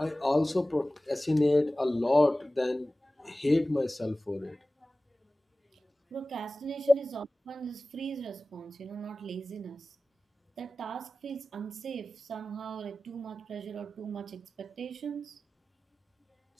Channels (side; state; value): both; normal; correlation 0.96